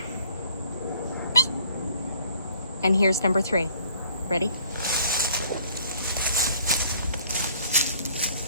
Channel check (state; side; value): inverted; both; correlation -0.59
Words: And here's number 3. Ready?